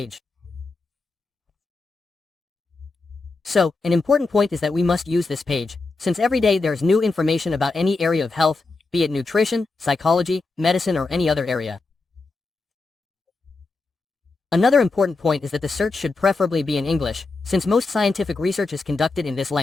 So, an important point is that we must use this page, since every day there's new information about any area of health, be it nutrition, psychology, medicine or any other area. Another important point is that the search should preferably be in English, since most scientific research is conducted in this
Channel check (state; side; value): quieter; right; 3.6 dB